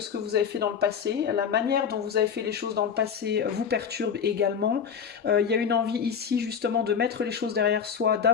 que vous avez fait dans le passé. La manière dont vous avez fait les choses dans le passé vous perturbe également. Il y a une envie ici justement de mettre les choses derrière soi,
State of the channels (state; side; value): quieter; right; 7.1 dB